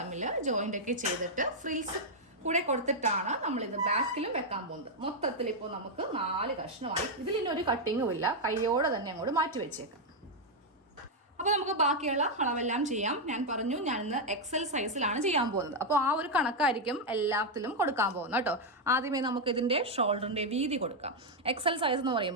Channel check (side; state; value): both; normal; correlation 0.00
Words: ജോയിന്റ് ഒക്കെ ചെയ്തിട്ട് ഫ്രിൽസ് കൂടെ കൊടുത്തിട്ടാണ് നമ്മളിത് ബാക്കിലും വെക്കാൻ പോകുന്നത്. മൊത്തത്തിൽ ഇപ്പോൾ നമുക്ക് 4 കഷ്ണമായി. ഇതിലൊരു കട്ടിങ്ങും ഇല്ല, കൈയോടെ തന്നെ അങ്ങോട്ട് മാറ്റി വെച്ചേക്കാം. അപ്പോൾ നമുക്ക് ബാക്കിയുള്ള അളവെല്ലാം ചെയ്യാം. ഞാൻ പറഞ്ഞു ഞാൻ ഇന്ന് എക്സൽ സൈസിലാണ് ചെയ്യാൻ പോകുന്നത്. അപ്പോൾ ആ ഒരു കണക്കായിരിക്കും എല്ലാത്തിലും കൊടുക്കാൻ പോകുന്നത് കേട്ടോ. ആദ്യമേ നമുക്ക് ഇതിൻ്റെ ഷോൾഡറിൻ്റെ വീതി കൊടുക്കാം. എക്സൽ സൈസ് എന്ന്